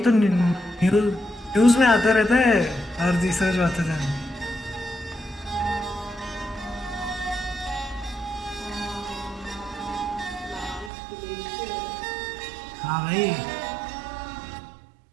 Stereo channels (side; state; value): left; drops out; at 10.9 s